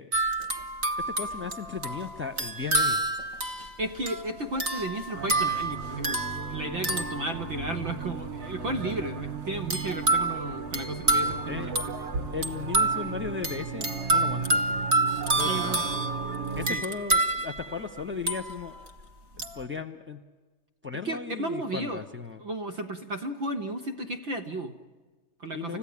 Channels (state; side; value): late; left; 3.9 ms